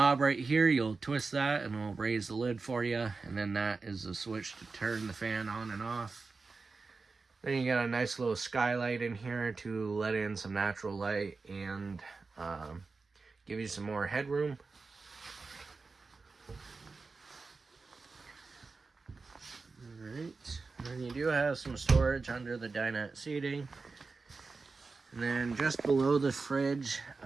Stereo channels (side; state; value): left; quieter; 4.2 dB